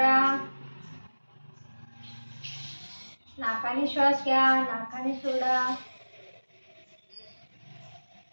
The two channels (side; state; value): both; inverted; correlation -1.00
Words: नाकाने श्वास घ्या, नाकाने सोडा.